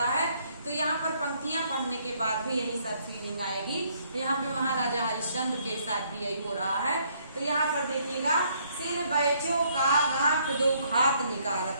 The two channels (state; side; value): inverted; both; correlation -0.68